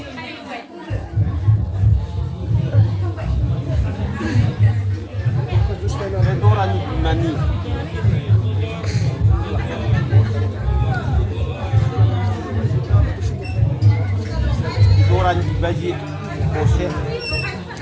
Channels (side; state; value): both; identical; correlation 1.00